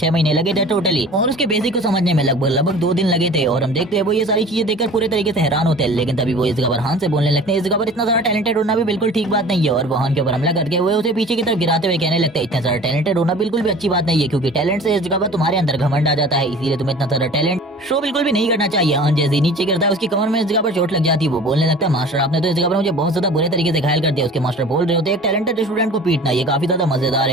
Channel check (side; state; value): both; normal; correlation 0.43